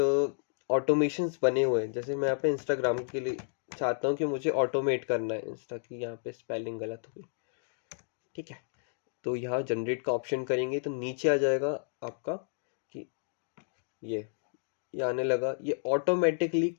automations बने हुए हैं। जैसे मैं यहाँ पे इंस्टाग्राम के लिए चाहता हूँ कि मुझे ऑटोमेट करना है इंस्टा की, यहाँ पे स्पेलिंग गलत हो गई, ठीक है। तो यहाँ जनरेट का ऑप्शन करेंगे तो नीचे आ जाएगा आपका कि ये आने लगा। ये ऑटोमेटिकली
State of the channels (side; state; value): right; silent; digital silence